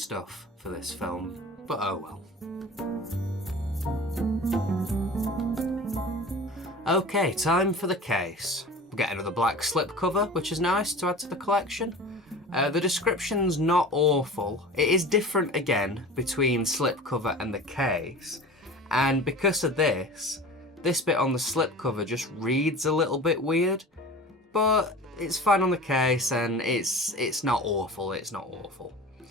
for this film, but oh well. Okay, time for the case. We get another black slipcover, which is nice to add to the collection. The description's not awful. It is different again between slipcover and the case, and because of this bit on the slipcover just reads a little bit weird. but it's fine on the case, and it's not awful, it's not awful.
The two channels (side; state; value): both; normal; correlation 0.37